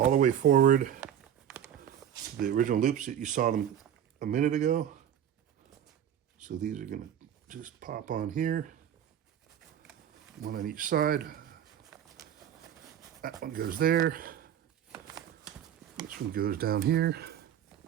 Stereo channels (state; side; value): quieter; left; 9.9 dB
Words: the way forward to the original loops that you saw them a minute ago. So these are going to just pop on here, one on each side. That one goes there. This one goes down here.